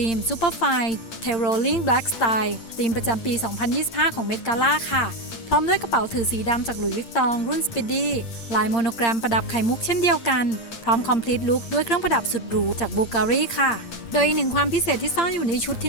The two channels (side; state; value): right; late; 8.8 ms